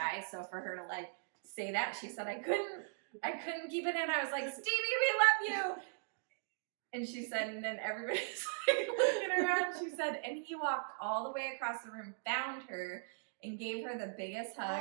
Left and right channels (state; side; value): silent; left; digital silence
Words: so for her to like say that, she said, I couldn't keep it in. I was like, "Stevie, we love you," and she said, and then everybody's like looking around. She said, and he walked all the way across the room, found her, and gave her the biggest